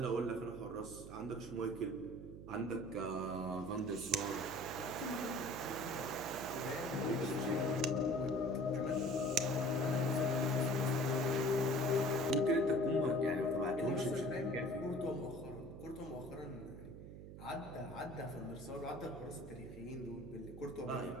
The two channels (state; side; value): noise; right; hum, 12 dB below the sound